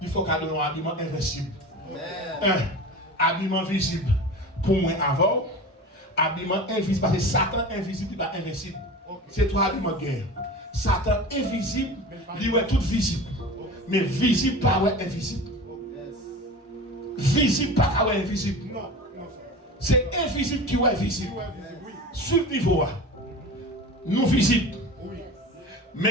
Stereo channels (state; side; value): normal; both; correlation 0.33